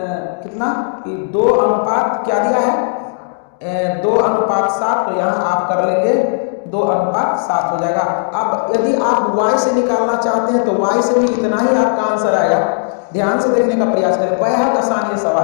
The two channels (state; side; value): silent; right; digital silence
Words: कितना कि 2 क्या दिया है 2:7, तो यहाँ आप कर लेंगे 2:7 हो जाएगा। अब यदि आप y से निकालना चाहते हैं तो y से भी इतना ही आपका आंसर आएगा, ध्यान से देखने का प्रयास करें, बेहद आसान ये